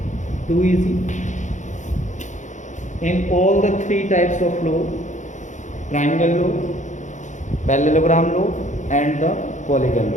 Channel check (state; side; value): late; right; 0.35 ms